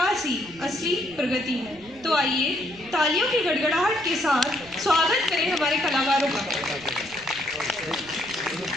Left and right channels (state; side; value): noise; right; rumble, 22 dB below the sound